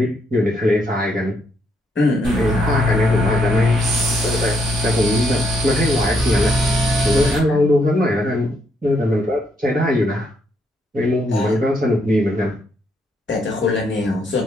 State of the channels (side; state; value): both; normal; correlation 0.75